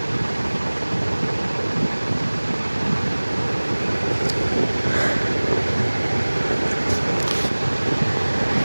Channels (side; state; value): both; inverted; correlation -1.00